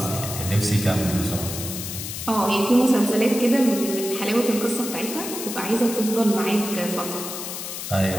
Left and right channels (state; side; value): noise; left; hiss, 7 dB below the sound